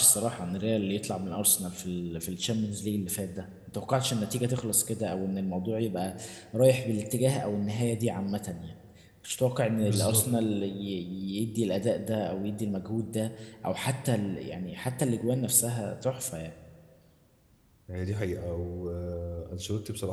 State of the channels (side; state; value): both; identical; correlation 1.00